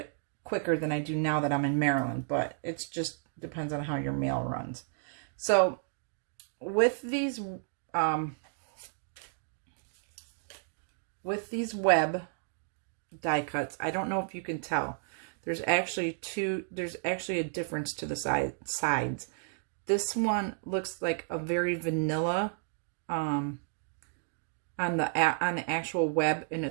quicker than I do now that I'm in Maryland, but it's just depends on how your mail runs. So with these web die cuts, I don't know if you can tell, there's actually a difference to the sides. This one looks like a very vanilla on the actual web, and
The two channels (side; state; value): left; silent; digital silence